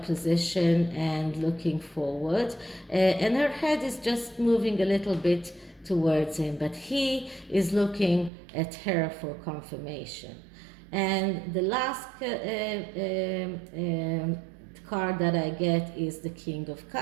position and looking forward, and her head is just moving a little bit towards him, but he is looking at her for confirmation. And the last card that I get is the King of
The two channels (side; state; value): left; drops out; at 8.3 s